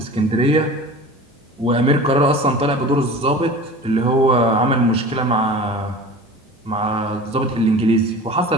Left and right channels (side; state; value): both; normal; correlation 0.37